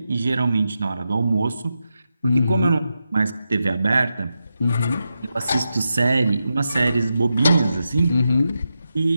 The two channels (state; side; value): inverted; both; correlation -0.88